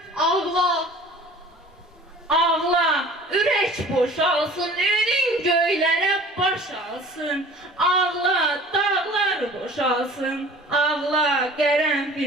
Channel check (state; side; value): normal; both; correlation 0.45